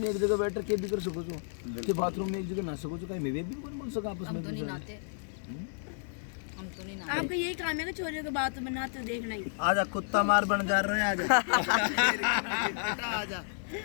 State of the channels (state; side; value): silent; right; digital silence